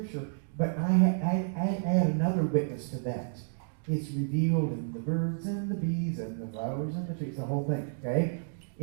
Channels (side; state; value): left; silent; digital silence